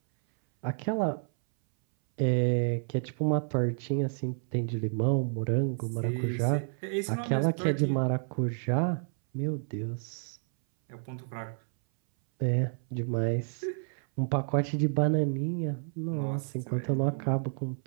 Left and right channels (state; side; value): silent; left; 58 dB below the other